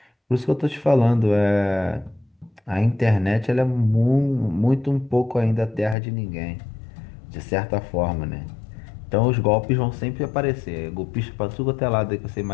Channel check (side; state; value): right; drops out; at 6.0 s